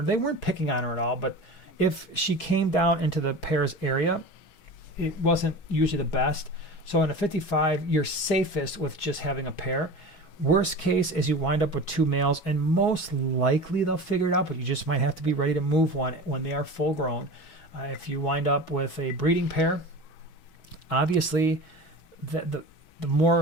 They weren't picking on her at all, but if she came down into the pair's area, it wasn't usually the best. So in a 55, you're safest with just having a pair. Worst case is you wind up with 2 males, and most likely they'll figure it out, but you just might have to be ready to move one when they are full grown. If you wind up with a breeding pair, obviously the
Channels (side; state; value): right; late; 6.2 ms